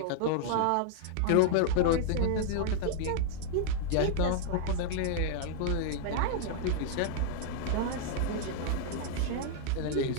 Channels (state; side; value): different; both; correlation -0.01